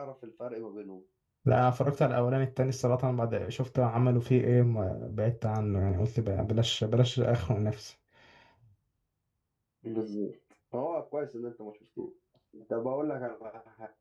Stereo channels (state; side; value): identical; both; correlation 1.00